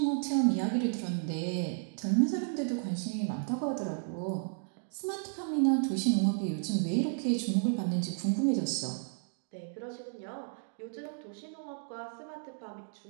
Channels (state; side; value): silent; left; digital silence